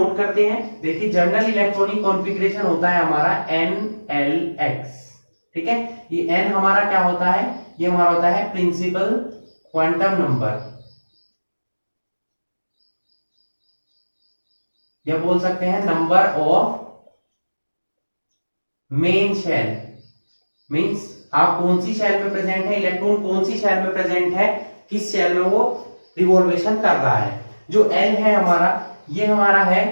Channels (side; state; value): both; inverted; correlation -1.00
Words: करते हैं। देखिए, जनरल इलेक्ट्रॉनिक कॉन्फ़िगरेशन होता है हमारा NLX। ठीक है, ये N हमारा क्या होता है, ये हमारा होता है प्रिंसिपल क्वांटम नंबर, या बोल सकते हैं number of main shell. Means आप कौन सी शेल में प्रेजेंट है, इलेक्ट्रॉन कौन सी शेल में प्रेजेंट है, किस शेल में वो रिवॉल्वेशन कर रहा है। जो L है हमारा, ये हमारा है